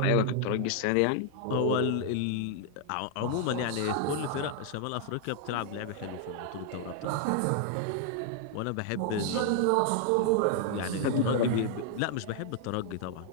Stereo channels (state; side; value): different; both; correlation 0.00